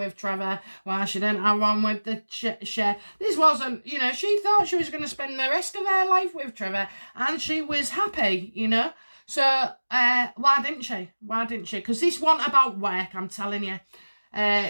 Trevor? Why she didn't have one with the Cher? This wasn't, you know, she thought she was going to spend the rest of her life with Trevor, and she was happy, you know. So, why didn't she? Why didn't she? Because this wasn't about work, I'm telling you.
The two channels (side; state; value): both; inverted; correlation -1.00